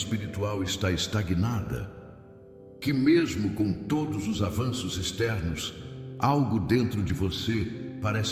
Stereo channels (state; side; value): identical; both; correlation 1.00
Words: está estagnada? Que mesmo com todos os avanços externos, algo dentro de você